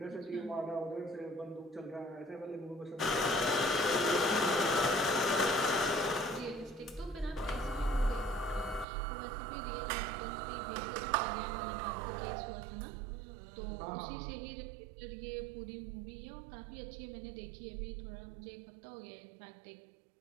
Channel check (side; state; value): left; drops out; at 8.8 s